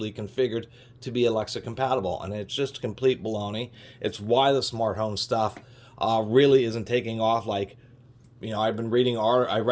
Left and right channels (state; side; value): identical; both; correlation 1.00